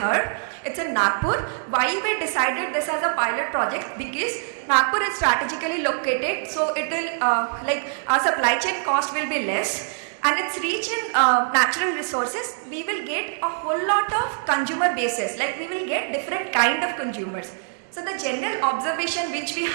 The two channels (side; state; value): left; silent; digital silence